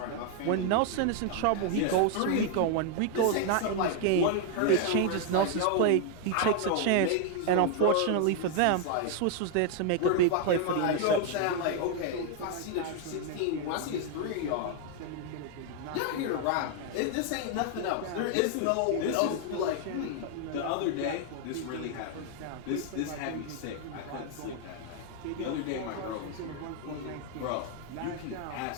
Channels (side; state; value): both; different; correlation 0.00